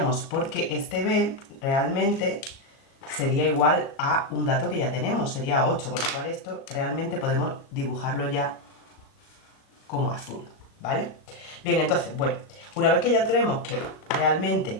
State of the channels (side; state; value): right; late; 37 ms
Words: porque este B realmente sería igual a un dato que ya tenemos, sería 8, con lo cual esto realmente podemos dibujarlo ya como azul, ¿vale? Bien, entonces, bueno, una vez que ya tenemos que